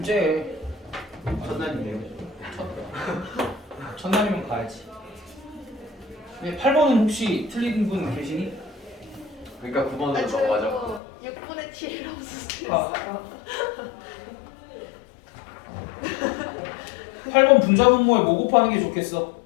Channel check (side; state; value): right; drops out; at 11.0 s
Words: 째. 첫날인데요. 첫날이면 가야지. 근데 8번은 혹시 틀린 분 계시니? 그러니까 9번으로 아, 저 넘어가죠. 이거 6분의 7이라고 아. 썼어요. 8번 분자분모에 뭐 곱하는 게 좋겠어?